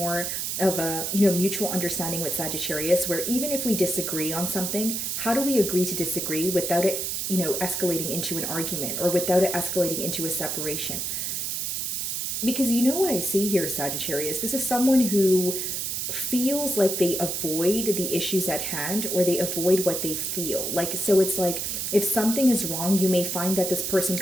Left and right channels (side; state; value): right; noise; hiss, 2 dB below the sound